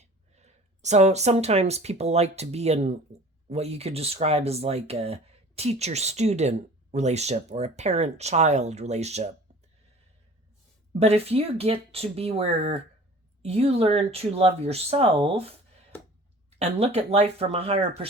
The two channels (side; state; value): both; normal; correlation 0.45